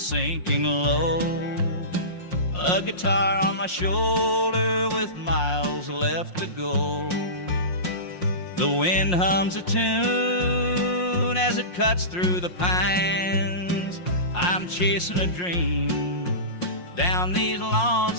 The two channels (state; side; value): late; right; 5.6 ms